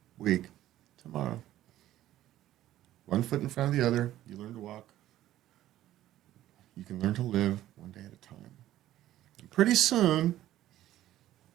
week. Tomorrow. One foot in front of the other. You learn to walk. You can learn to live one day at a time. And pretty soon,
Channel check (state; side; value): quieter; left; 13.7 dB